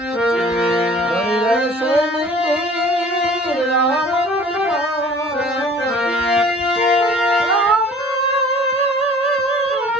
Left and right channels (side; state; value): both; normal; correlation 0.49